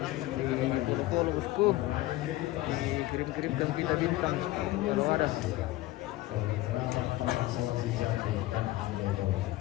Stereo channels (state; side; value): quieter; right; 17.4 dB